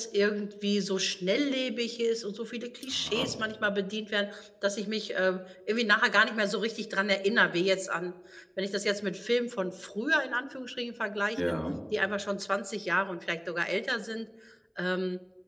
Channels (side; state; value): both; identical; correlation 1.00